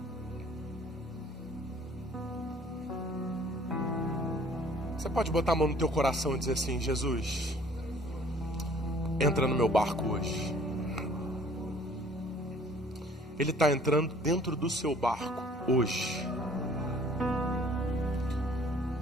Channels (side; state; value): both; normal; correlation 0.55